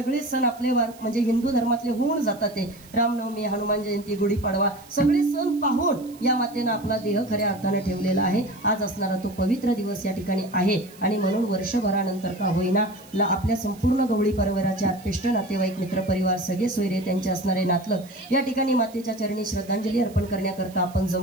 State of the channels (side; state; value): right; noise; hiss, 23 dB below the sound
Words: सण आपले म्हणजे हिंदू धर्मातले होऊन जातात. ते रामनवमी, हनुमान जयंती, गुढीपाडवा सगळे सण पाहून या मातेनं आपला देह खऱ्या अर्थानं ठेवलेला आहे. आज असणारा तो पवित्र दिवस या ठिकाणी आहे आणि म्हणून वर्षभरानंतर का होईना आपल्या संपूर्ण गवळी परिवाराचे आत्पेष्ट नातेवाईक, मित्रपरिवार, सगळे सोयरे, त्यांचे असणारे नातलं या ठिकाणी मातेच्या चरणी श्रद्धांजली अर्पण करण्याकरता आपण